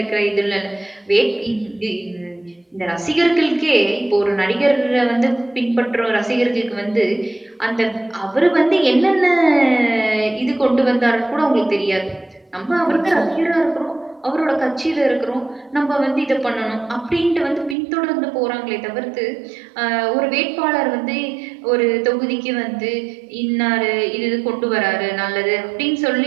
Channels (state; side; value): drops out; left; at 17.8 s